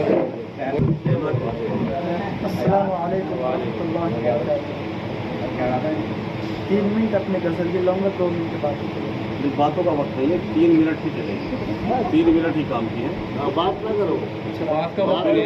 अस्सलाम वालेकुम रहमतुल्लाहि व बरकातहू। 3 मिनट अपने गज़ल की लूँगा, 2 मिनट बात करूँगा। बातों का वक्त नहीं है, 3 मिनट ही चलेंगे, 3 मिनट ही काम किए। बात ना करो, बात का वक्त नहीं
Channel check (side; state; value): both; identical; correlation 1.00